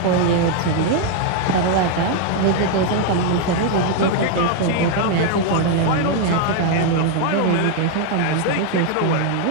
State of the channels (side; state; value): both; different; correlation 0.00